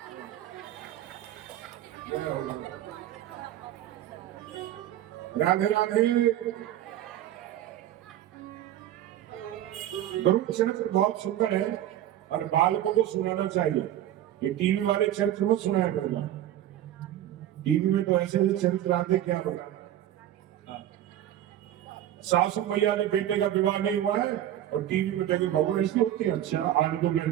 राधे राधे। गरुड़ चरित्र बहुत सुंदर है और बालकों को सुनाना चाहिए। ये टीवी वाले चरित्र मत सुनाया करना। टीवी में तो ऐसे ऐसे चरित्र आते क्या होगा। सासू मैया ने बेटे का विवाह नहीं हुआ है और टीवी में देखे बहू ऐसी होती है, अच्छा आज तो मैं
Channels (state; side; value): quieter; left; 12.2 dB